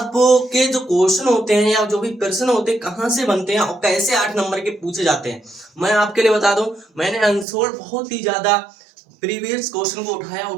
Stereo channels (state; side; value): drops out; left; at 7.5 s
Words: जो क्वेश्चन होते हैं या जो भी प्रश्न होते हैं कहाँ से बनते हैं और कैसे 8 नंबर के पूछे जाते हैं, मैं आपके लिए बता दूं। मैंने अनसोल्ड बहुत ही ज्यादा प्रीवियस क्वेश्चन को